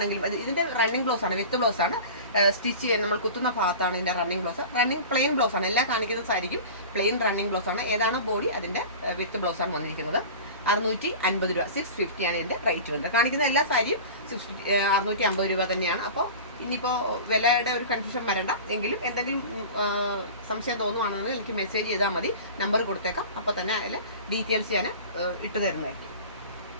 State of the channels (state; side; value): inverted; both; correlation -0.35